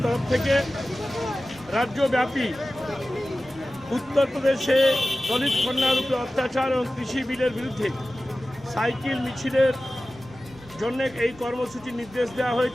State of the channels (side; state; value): both; normal; correlation 0.95